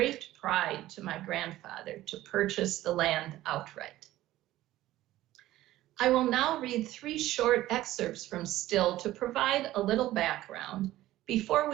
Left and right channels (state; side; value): quieter; left; 15.4 dB